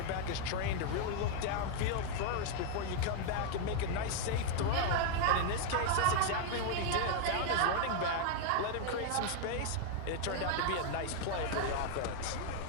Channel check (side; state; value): both; different; correlation 0.00